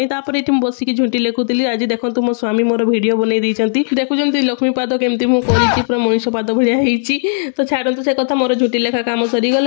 तापर एठी बसी कि झुंटी लेखुतिली आज देखंतु मो स्वामी मोर वीडियो बनै दैचंती देखुचंती लक्ष्मी पाद केमती मु करिची पूरा मनीष पाद भलिया हेची तो छाडंतु से कथा मोर झुंटी लेखा काम सरी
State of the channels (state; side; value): silent; right; digital silence